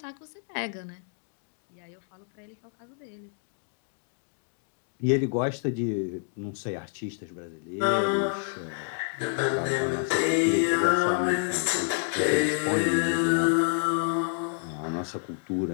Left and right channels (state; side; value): silent; right; digital silence